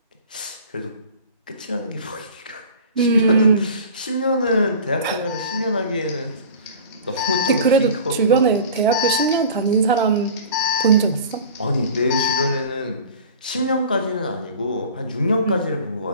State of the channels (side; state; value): both; inverted; correlation -0.40